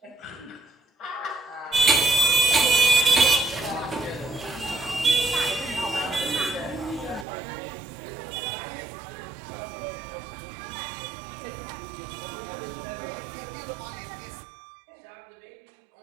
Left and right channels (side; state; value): left; drops out; at 7.2 s